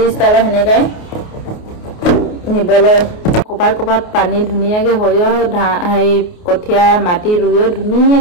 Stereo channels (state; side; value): late; right; 28 ms